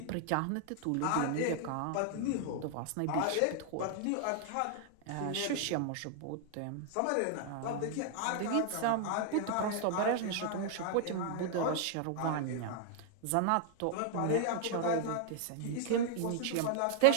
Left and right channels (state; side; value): different; both; correlation 0.00